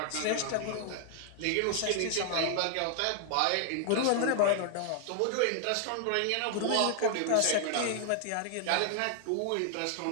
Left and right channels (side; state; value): both; different; correlation 0.00